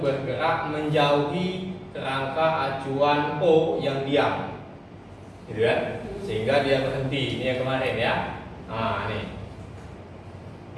bergerak menjauhi kerangka acuan O yang diam, gitu kan? Sehingga dia berhenti. Ini yang kemarin ya. Nah, nih.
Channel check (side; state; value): both; identical; correlation 1.00